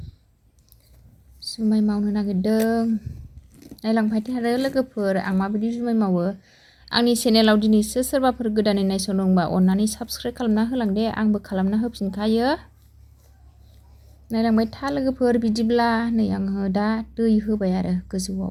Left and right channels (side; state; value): both; identical; correlation 1.00